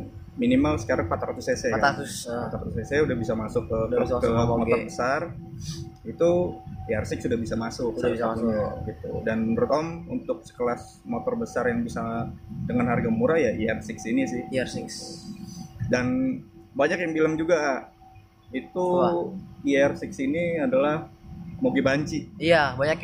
minimal sekarang 400 cc 400. kan. 400 cc udah bisa masuk ke Udah bisa klub, ke masuk ke motor moge. besar. Itu ER6 sudah bisa masuk Sudah salah bisa satunya, gitu. Dan menurut Om untuk sekelas motor besar yang bisa dengan harga murah ya ER6 ini sih. ER6. Dan banyak yang bilang juga itu Wah. ER6 ini adalah moge banci. Iya, banyak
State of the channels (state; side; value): identical; both; correlation 1.00